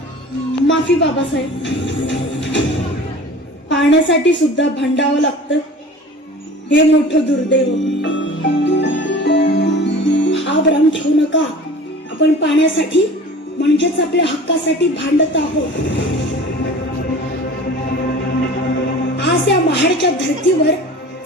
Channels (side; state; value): both; normal; correlation 0.41